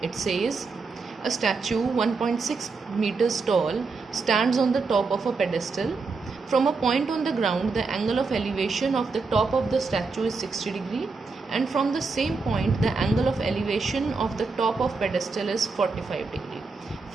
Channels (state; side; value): quieter; left; 4.3 dB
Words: It says a statue 1.6 meters tall stands on the top of a pedestal. From a point on the ground, the angle of elevation of the top of the statue is 60 degree, and from the same point, the angle of elevation of the top of pedestal is 45 degree.